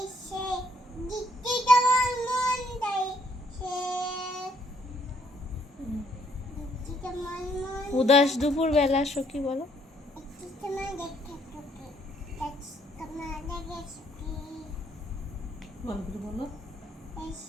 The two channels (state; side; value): normal; both; correlation 0.68